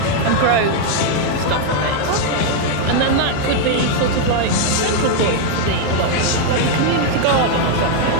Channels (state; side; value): different; both; correlation 0.00